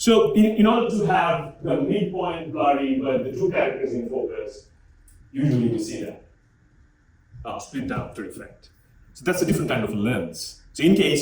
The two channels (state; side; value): identical; both; correlation 1.00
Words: in order to have the midpoint blurry but the two characters in focus, usually we see that split diopter effect. So that's a different kind of lens. So in